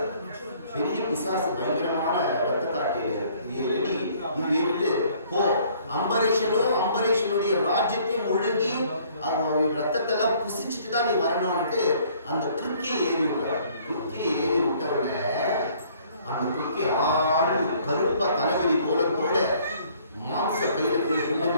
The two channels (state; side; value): inverted; both; correlation -0.59